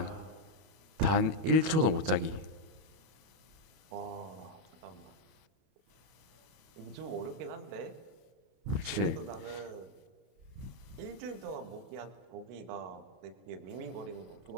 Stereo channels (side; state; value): left; late; 31 ms